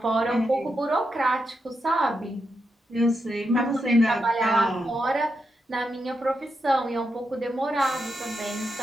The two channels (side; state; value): both; normal; correlation 0.85